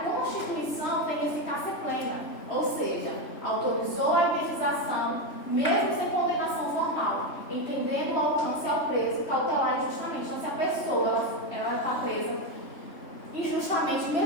Constituição tem eficácia plena, ou seja, autorizou a indenização mesmo sem condenação formal, entendendo o alcance ao preso cautelar injustamente. Então, se a pessoa está presa injustamente,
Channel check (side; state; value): right; late; 3.3 ms